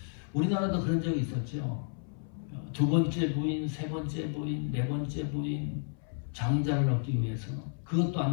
우리나라도 그런 적이 있었죠. 두 번째 부인, 세 번째 부인, 네 번째 부인 장자를 얻기 위해서 그것도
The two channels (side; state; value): right; silent; 57 dB below the other